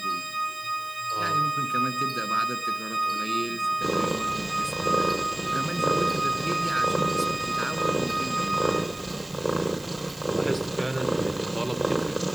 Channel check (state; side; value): noise; right; hiss, 19 dB below the sound